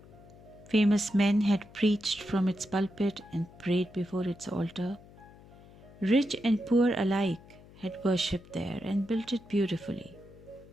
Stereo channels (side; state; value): left; noise; hum, 22 dB below the sound